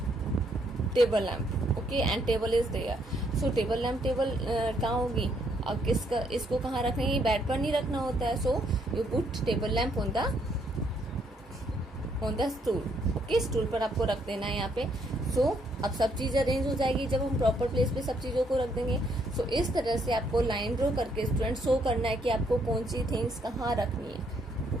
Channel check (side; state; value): both; normal; correlation 0.71